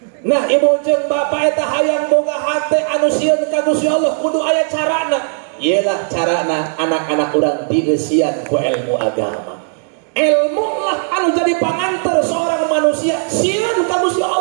Nah ibu jeung bapak eta hayang boga hate anu sieun ka Gusti Allah kudu aya carana. Iyalah carana anak-anak urang dieusian ku ilmu agama. Ilmu lah anu jadi pangantar seorang manusia sieun ka Gusti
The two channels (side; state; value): left; silent; digital silence